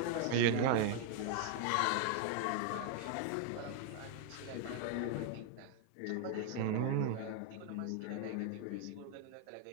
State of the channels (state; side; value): different; both; correlation 0.00